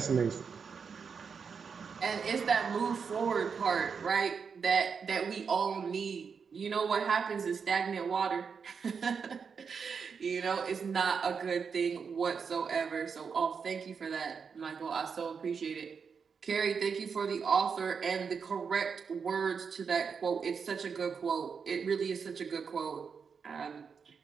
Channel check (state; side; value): quieter; left; 6.0 dB